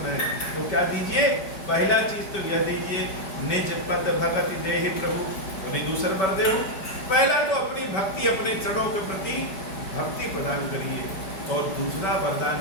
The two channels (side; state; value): right; late; 5.2 ms